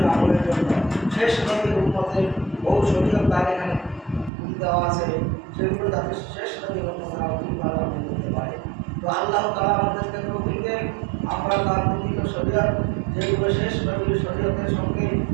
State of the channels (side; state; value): left; drops out; at 4.3 s